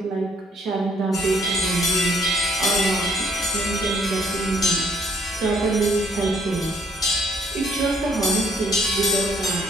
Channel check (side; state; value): both; normal; correlation 0.63